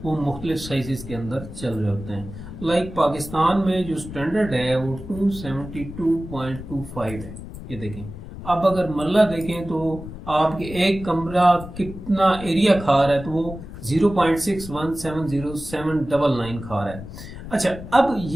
वो मुख्तलिफ साइजेस के अंदर चल रहे होते हैं। लाइक पाकिस्तान में जो स्टैंडर्ड है वो 272.25 है। ये देखें, अब अगर मरला देखें तो आपके एक कमरा कितना एरिया खा रहा है तो वो 0.617079 खा रहा है। अच्छा, अब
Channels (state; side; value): noise; left; rumble, 12 dB below the sound